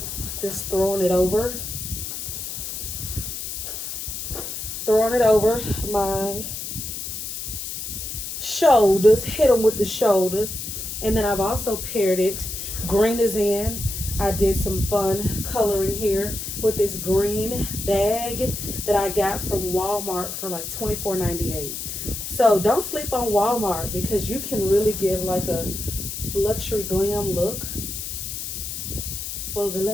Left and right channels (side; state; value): left; noise; hiss, 6 dB below the sound